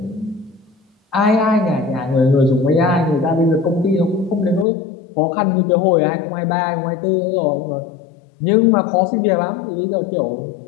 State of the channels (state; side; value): drops out; right; at 4.7 s